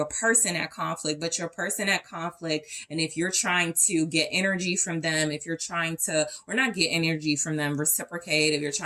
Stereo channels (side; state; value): both; identical; correlation 1.00